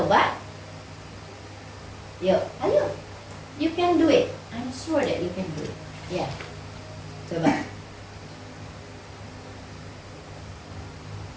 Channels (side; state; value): both; identical; correlation 1.00